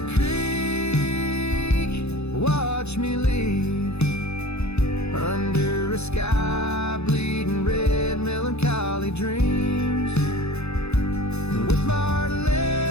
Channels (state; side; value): late; right; 0.80 ms